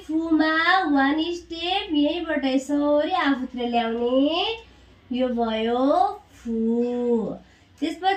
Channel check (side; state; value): both; identical; correlation 1.00